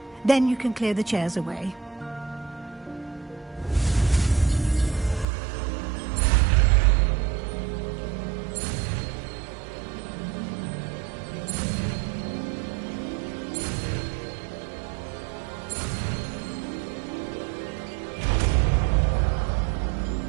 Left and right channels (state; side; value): drops out; left; at 5.2 s